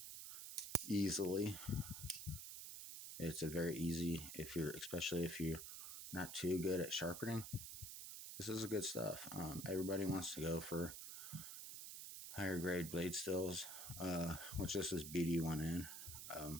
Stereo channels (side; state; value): right; noise; hiss, 8 dB below the sound